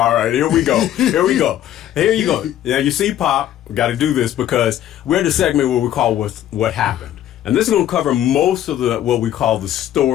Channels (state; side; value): quieter; right; 11.8 dB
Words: right, here we go. Here we go. Here you go. Now you see, Pop, we got to do this because we're in the segment where we call what happened, and this is going to cover most of the what we call the